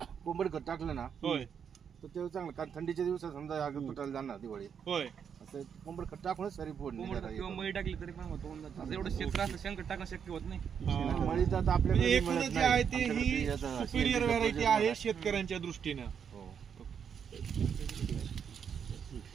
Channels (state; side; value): quieter; left; 7.4 dB